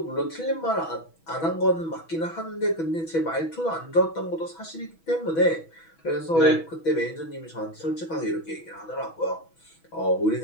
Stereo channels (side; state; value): right; late; 6.1 ms